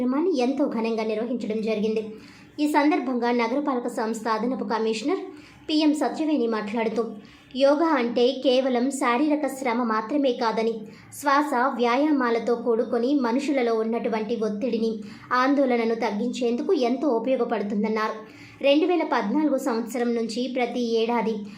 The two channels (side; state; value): both; identical; correlation 1.00